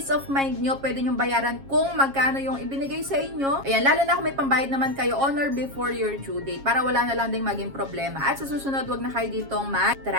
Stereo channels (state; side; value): late; left; 7.3 ms